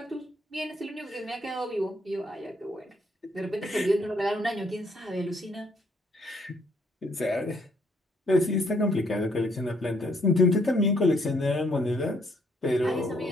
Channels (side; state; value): both; normal; correlation 0.69